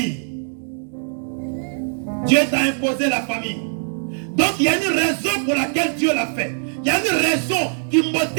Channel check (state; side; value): silent; left; 65 dB below the other